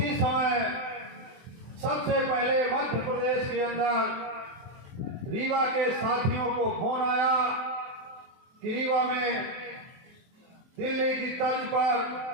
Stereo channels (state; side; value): late; left; 23 ms